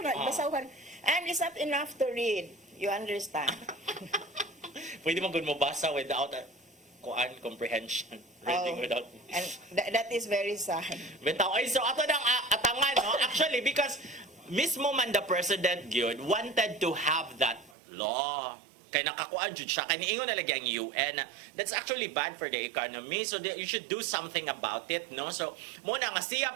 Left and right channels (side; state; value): left; drops out; at 17.8 s